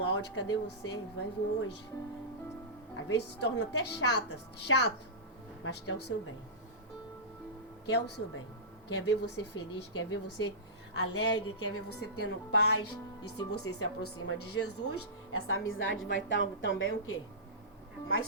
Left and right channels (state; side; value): normal; both; correlation -0.19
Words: áudio, cadê você? Vai vir hoje. Às vezes se torna até chato, mas quer o seu bem. Quer o seu bem. Quer ver você feliz, quer ver você alegre, quer ver você tendo paz. E se você se aproxima de Jesus, essa amizade vai estar também o quê? Mais